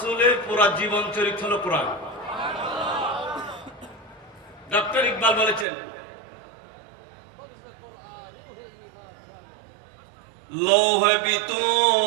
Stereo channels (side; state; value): left; drops out; at 5.7 s